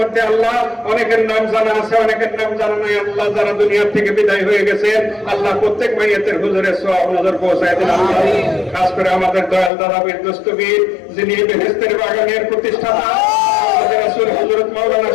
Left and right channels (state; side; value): drops out; right; at 9.7 s